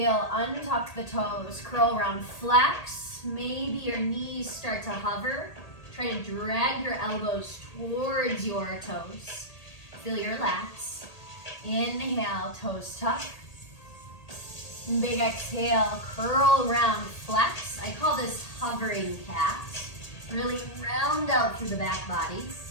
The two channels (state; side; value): late; right; 1.8 ms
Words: untuck the toes. Curl around, flex. Maybe your knees start to hover. Try to drag your elbows towards your toes. Feel your lats. Inhale, toes tuck. Big exhale, curl around, flex. I call this hovering cat. Really round out through the back body.